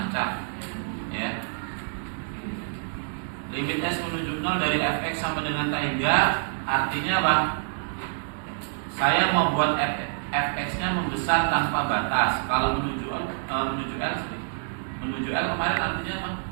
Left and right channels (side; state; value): left; silent; 60 dB below the other